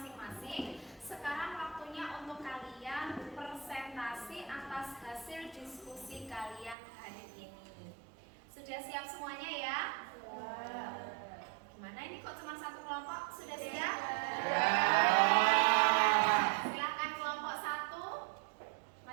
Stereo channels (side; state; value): left; drops out; at 6.8 s